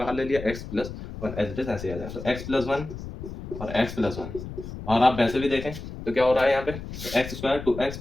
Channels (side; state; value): left; noise; rumble, 10 dB below the sound